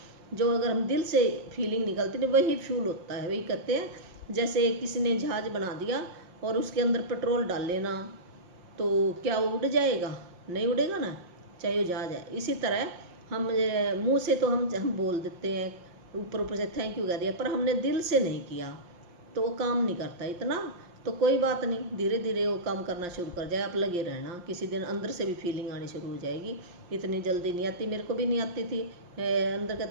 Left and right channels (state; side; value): late; left; 5.7 ms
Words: जो अगर हम दिल से फीलिंग निकलती है वही फ्यूल होता है। वही कहते हैं जैसे किसी ने जहाज बना दिया और उसके अंदर पेट्रोल डाल लेना, तो क्या वो उड़ जाएगा? नहीं उड़ेगा ना, चाहे वो जहाज है। इसी तरह हम मुंह से तो हम बोल देते हैं, ऊपर ऊपर से थैंक यू कह दिया, पर हमने दिल से नहीं किया तो वो काम नहीं करता इतना। तो कोई बात नहीं, धीरे धीरे वो काम करना शुरू कर जाए, आप लगे रहना। किसी दिन अंदर से भी फीलिंग आनी शुरू हो जाएगी। इतनी जल्दी नहीं आती, मेरे को भी नहीं आती थी। अंदर